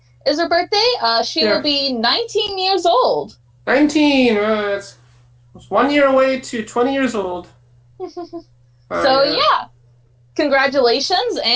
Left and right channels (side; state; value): both; identical; correlation 1.00